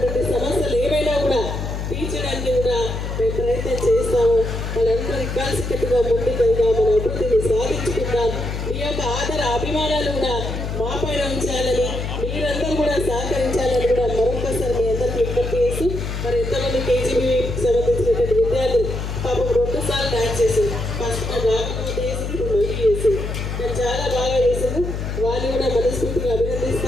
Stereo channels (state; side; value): noise; left; hum, 4 dB below the sound